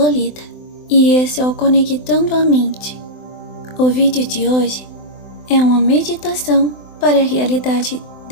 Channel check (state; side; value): late; right; 24 ms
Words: e esse é o Conectando a Mente. O vídeo de hoje é uma meditação para a realidade